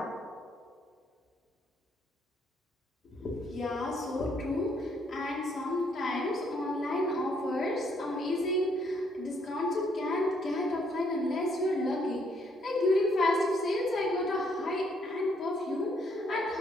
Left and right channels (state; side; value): normal; both; correlation 0.70